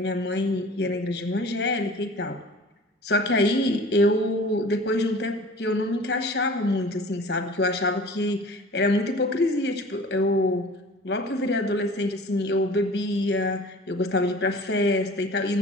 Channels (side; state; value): both; normal; correlation 0.43